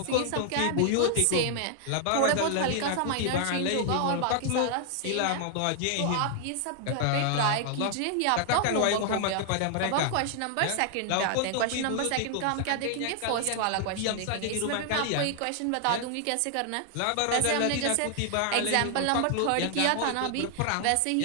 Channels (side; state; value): both; different; correlation 0.00